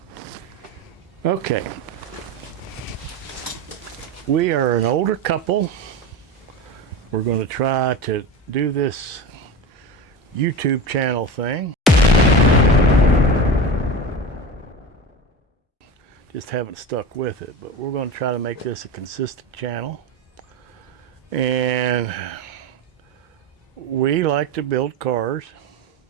Okay. We are an older couple. We're going to try to do this YouTube channel thing. Just haven't stuck with it, but we're going to try to make this a consistent channel. And we like to build cars,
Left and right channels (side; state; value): both; normal; correlation 0.26